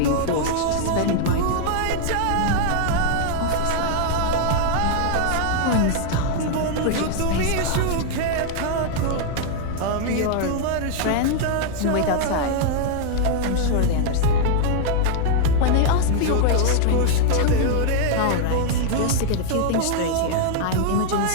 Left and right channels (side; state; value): both; different; correlation 0.00